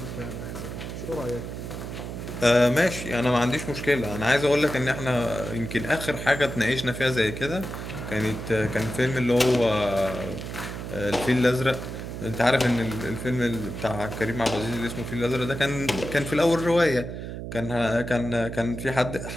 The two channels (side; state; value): right; noise; hum, 8 dB below the sound